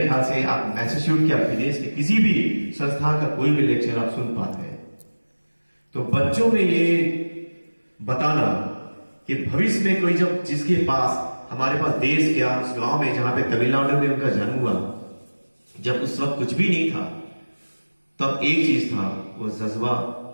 ख्याल से आप मैसेच्यूट या विदेश के किसी भी संस्थान का कोई भी लेक्चर आप सुन पाते हैं। तो बच्चों में ये बताना कि भविष्य में कोई जब जिसके पास हमारे पास देश क्या उस गांव में जहां पे तमिलनाडु में उनका जन्म हुआ, जब उस वक्त कुछ भी नहीं था, तब एक चीज था, वो जज्बा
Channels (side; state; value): both; inverted; correlation -1.00